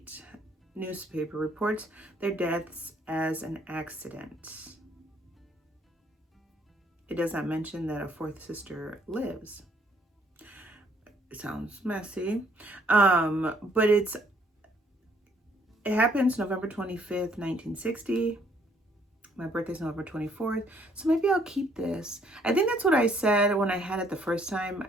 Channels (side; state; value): both; normal; correlation 0.65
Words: newspaper reports their deaths as an accident. It does not mention that a 4th sister lives. It sounds messy. But it happens November 25th, 1960. My birthday's November 24th. So maybe I'll keep this. I think that's what I said when I had it the first time.